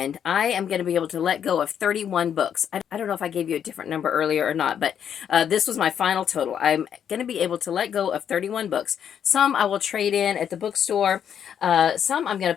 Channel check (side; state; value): right; quieter; 8.7 dB